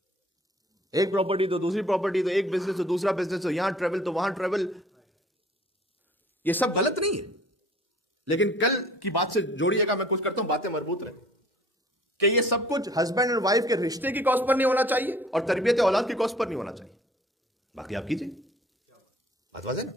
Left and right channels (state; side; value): normal; both; correlation 0.52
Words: ایک پراپرٹی تو دوسری پراپرٹی, تو ایک بزنس تو دوسرا بزنس, تو یہاں ٹریول تو وہاں ٹریول, یہ سب غلط نہیں ہے. لیکن کل کی بات سے جوڑیے گا, میں کچھ کرتا ہوں باتیں مربوط رہیں, کہ یہ سب کچھ ہسبینڈ اور وائف کے رشتے کی کاسٹ پر نہیں ہونا چاہیے اور تربیت اولاد کی کاسٹ پر نہیں ہونا چاہیے. باقی آپ کیجئے, بات واضح نا.